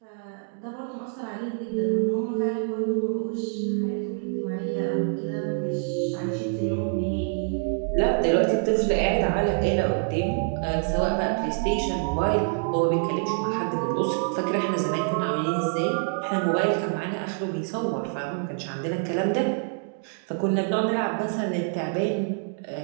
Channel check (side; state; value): left; silent; 61 dB below the other